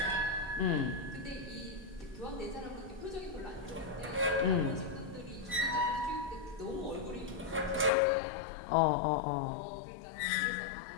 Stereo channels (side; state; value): right; drops out; at 7.9 s